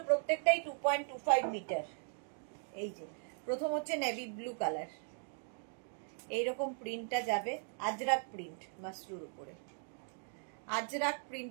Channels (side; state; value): left; silent; 52 dB below the other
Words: প্রত্যেকটাই 2.25 মিটার। এই যে প্রথম হচ্ছে নেভি ব্লু কালার, এইরকম প্রিন্টটা যাবে, আজরাক প্রিন্ট মাশরুর উপরে, আজরাক